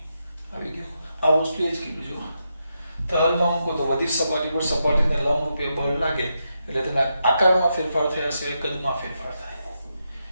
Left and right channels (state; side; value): inverted; both; correlation -0.85